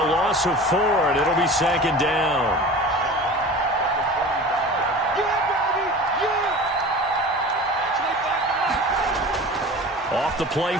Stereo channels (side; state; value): both; normal; correlation 0.37